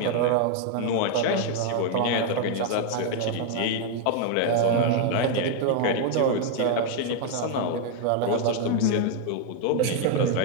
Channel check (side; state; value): both; different; correlation 0.00